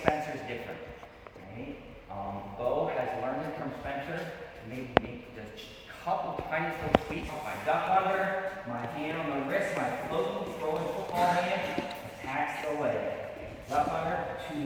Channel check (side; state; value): both; identical; correlation 1.00